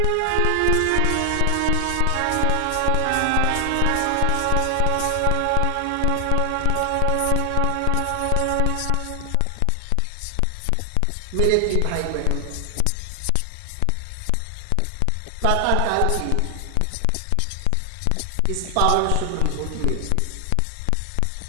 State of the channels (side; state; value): both; different; correlation 0.00